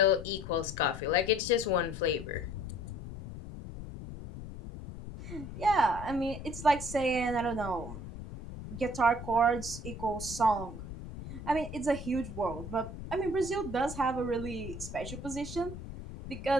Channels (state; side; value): noise; left; rumble, 10 dB below the sound